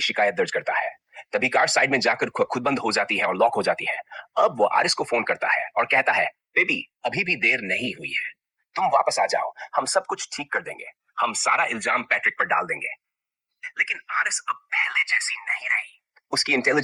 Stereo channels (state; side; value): identical; both; correlation 1.00